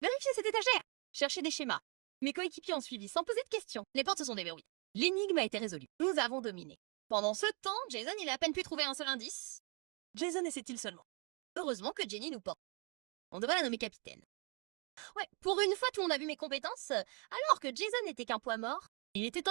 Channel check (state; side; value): quieter; left; 33.9 dB